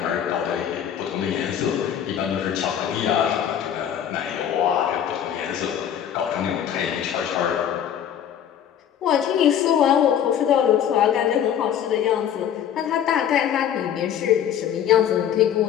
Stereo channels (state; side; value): quieter; right; 9.5 dB